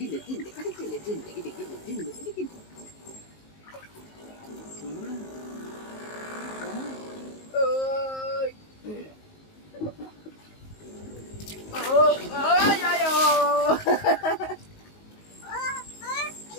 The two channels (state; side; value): late; right; 19 ms